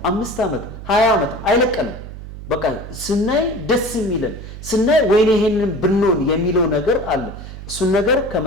5 ዓመት 20 ዓመት አይለቀንም። በቃ ስናይ ደስ የሚለን ስናይ ወይኔ ይሄንን ብንሆን የሚለው ነገር አለ። እሱን ነገር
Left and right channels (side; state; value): right; noise; hum, 12 dB below the sound